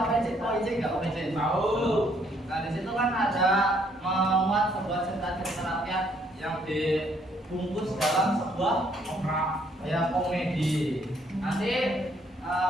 OIC enggak OPC? Tahu. Nah, di situ kan ada memuat sebuah cerita-cerita rakyat yang dibungkus dalam sebuah ya komedi. Nanti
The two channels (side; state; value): both; normal; correlation 0.67